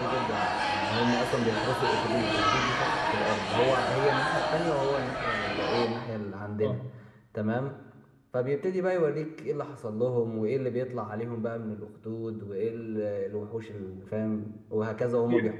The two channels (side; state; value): both; identical; correlation 1.00